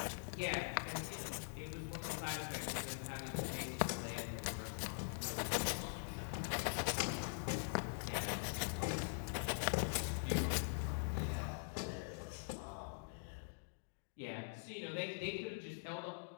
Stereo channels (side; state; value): right; silent; digital silence